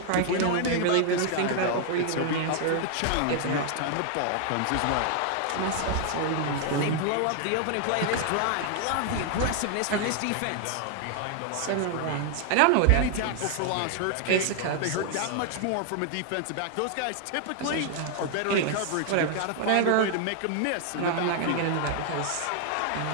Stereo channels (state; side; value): different; both; correlation 0.00